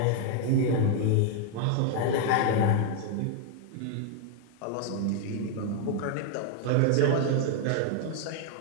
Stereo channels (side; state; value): both; different; correlation 0.00